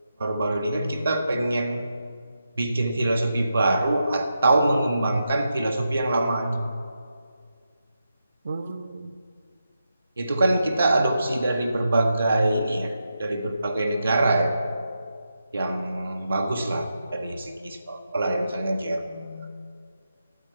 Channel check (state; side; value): inverted; both; correlation -0.86